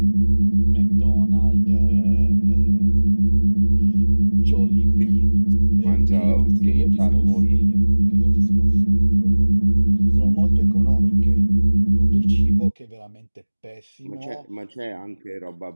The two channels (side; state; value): both; inverted; correlation -1.00